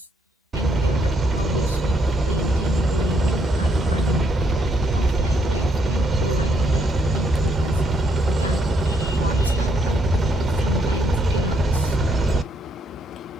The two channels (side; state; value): both; normal; correlation 0.72